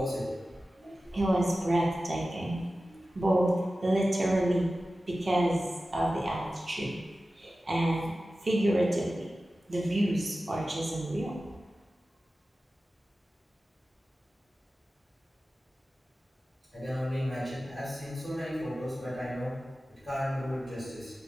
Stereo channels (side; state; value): both; normal; correlation 0.95